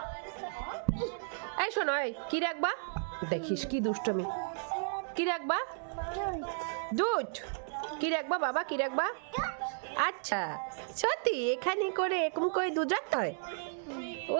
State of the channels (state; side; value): silent; left; digital silence